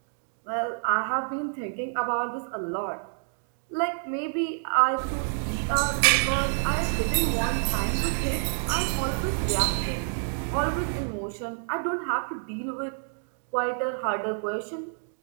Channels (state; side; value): silent; left; digital silence